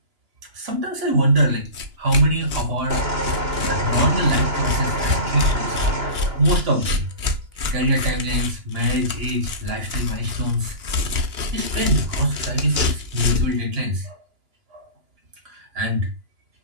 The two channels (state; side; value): late; left; 2.9 ms